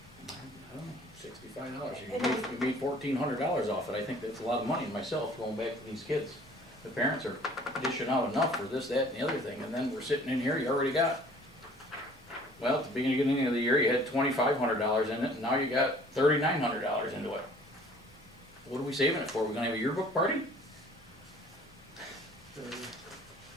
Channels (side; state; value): both; normal; correlation 0.52